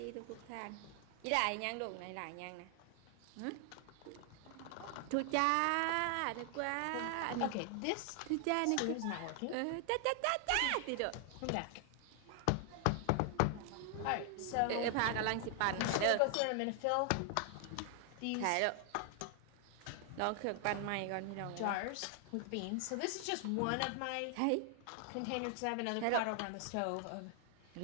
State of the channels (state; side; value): different; both; correlation 0.00